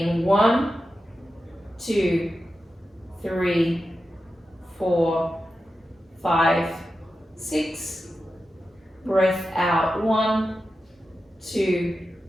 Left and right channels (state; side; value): normal; both; correlation 0.91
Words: 1, 2, 3, 4, 5, 6. Breath out 1, 2,